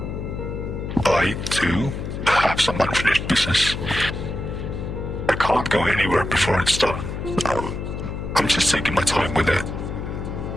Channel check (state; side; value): noise; left; hum, 6 dB below the sound